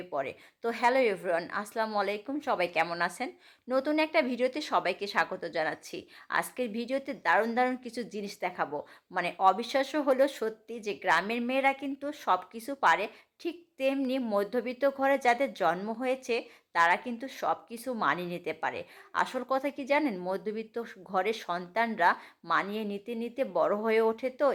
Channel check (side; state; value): both; identical; correlation 1.00